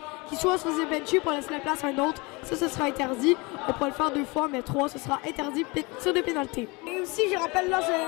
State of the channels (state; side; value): quieter; right; 26.3 dB